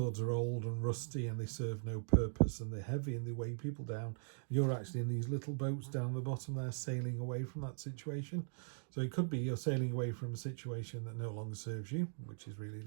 are old and rusty and they serve no purpose and they're heavy and they weigh people down. You're actually in these little boats down the bottom there sailing away from that situation. So it could be you're sailing away from a situation that no longer serves you, which is really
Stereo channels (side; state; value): left; silent; digital silence